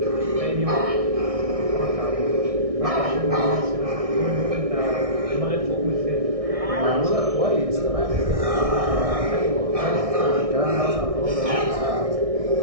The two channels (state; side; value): late; left; 1.6 ms